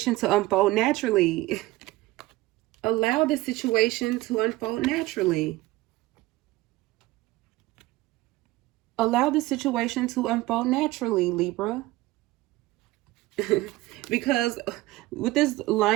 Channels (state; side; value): quieter; left; 18.9 dB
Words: to unfold naturally. Allow this situation to unfold naturally. Allow the situation to unfold naturally, Libra. Because with this